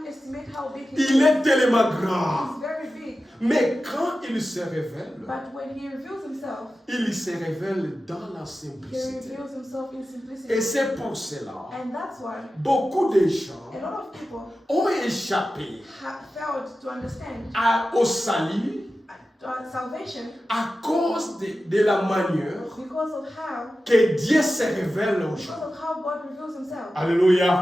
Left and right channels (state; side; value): normal; both; correlation 0.93